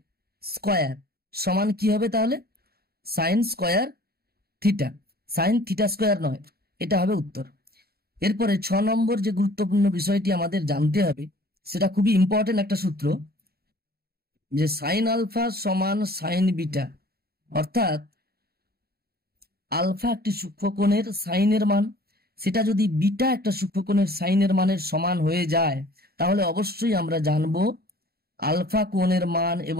স্কোয়ার সমান কি হবে? তাহলে sine square theta, sine theta square নয়, এটা হবে উত্তর। এরপরে 6 নম্বর যে গুরুত্বপূর্ণ বিষয়টি আমাদের জানতে হবে সেটা খুবই ইম্পর্টেন্ট একটা সূত্র, যে সাইন আলফা সমান সাইন বিটা। অর্থাৎ আলফা একটি সূক্ষ্মকোণের সাইনের মান, সেটা যদি বিটা একটা সূক্ষ্মকোণের সাইনের মানের সমান হয়ে যায় তাহলে অবশ্যই আমরা জানবো আলফা কোণের মান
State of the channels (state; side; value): late; left; 0.45 ms